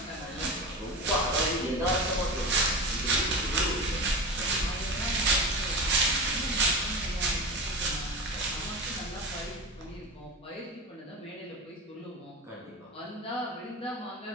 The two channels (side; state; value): both; normal; correlation 0.25